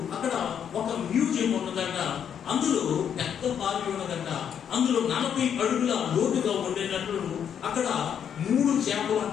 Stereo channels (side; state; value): right; quieter; 8.4 dB